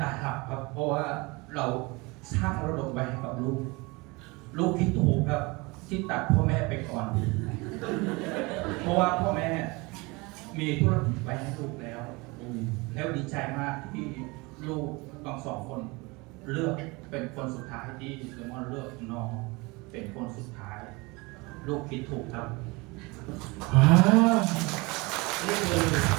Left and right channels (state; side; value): quieter; left; 25.4 dB